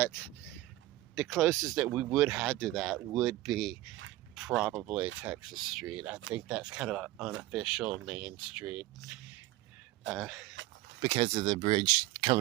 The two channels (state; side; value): quieter; left; 16.9 dB